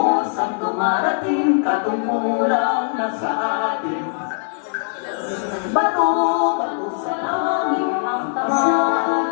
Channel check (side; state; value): right; silent; 65 dB below the other